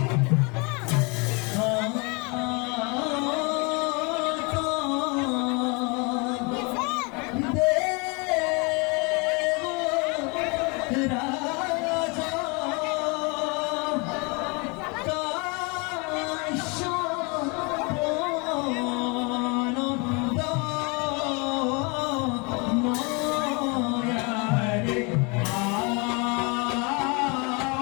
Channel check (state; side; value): quieter; right; 30.5 dB